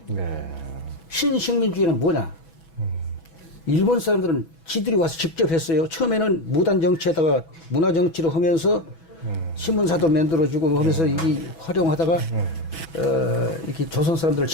신식민주의는 뭐냐? 일본 사람들은 지들이 와서 직접 했어요. 처음에는 무단 정치에다가 문화 정치를 하면서 신문사도 만들어주고 하면서 이 활용하다가 이렇게 조선 사람들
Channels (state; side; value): late; right; 6.1 ms